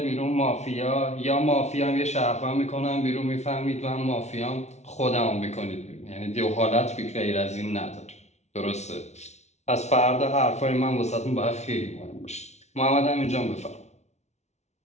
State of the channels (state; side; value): late; right; 0.32 ms